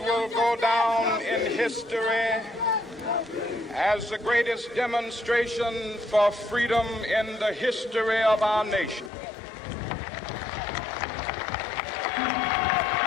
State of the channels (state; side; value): drops out; right; at 9.1 s